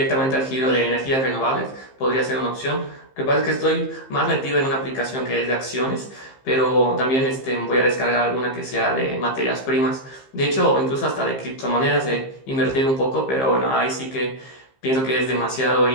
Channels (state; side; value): late; right; 15 ms